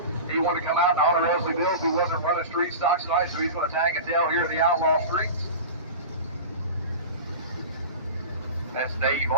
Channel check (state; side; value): inverted; both; correlation -0.31